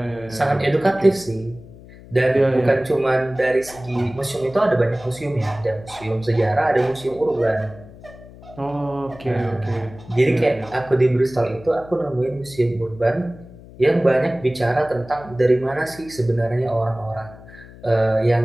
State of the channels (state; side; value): noise; left; hum, 19 dB below the sound